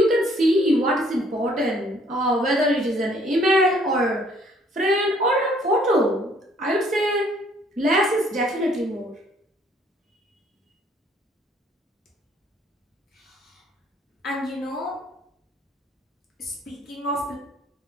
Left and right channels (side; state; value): both; normal; correlation 0.62